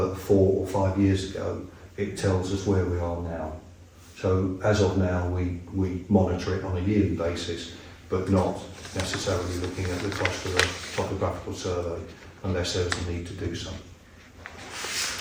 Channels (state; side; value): identical; both; correlation 1.00